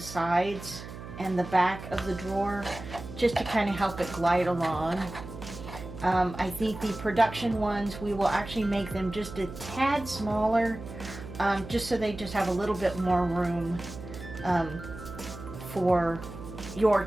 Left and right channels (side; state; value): right; noise; hum, 12 dB below the sound